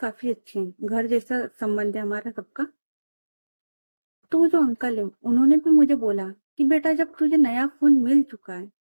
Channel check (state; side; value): inverted; both; correlation -1.00